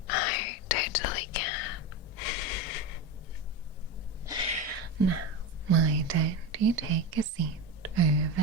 I totally can. Now, why don't you take a seat over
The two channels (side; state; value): both; normal; correlation 0.21